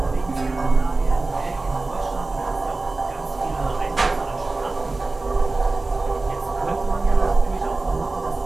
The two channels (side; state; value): left; quieter; 3.3 dB